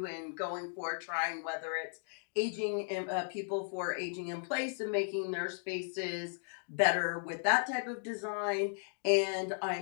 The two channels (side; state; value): right; silent; digital silence